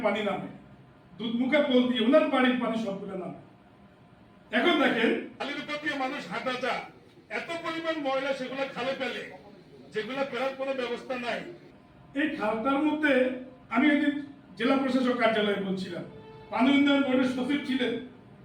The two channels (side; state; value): both; identical; correlation 1.00